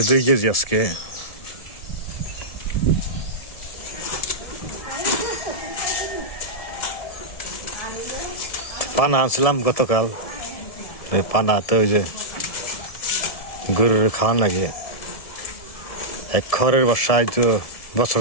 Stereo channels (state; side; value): late; right; 1.7 ms